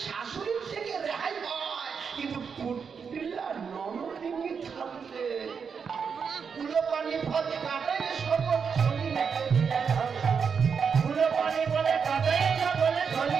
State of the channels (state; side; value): quieter; left; 6.2 dB